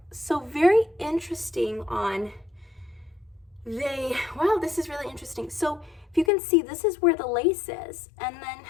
So very interesting on wow, this is really interesting. So if you can see, this is where the lace is, and then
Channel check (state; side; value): drops out; right; at 6.3 s